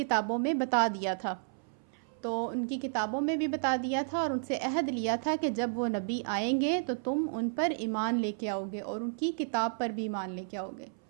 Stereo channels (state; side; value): silent; left; 56 dB below the other